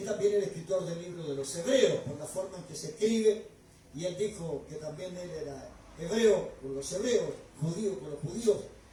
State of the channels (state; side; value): identical; both; correlation 1.00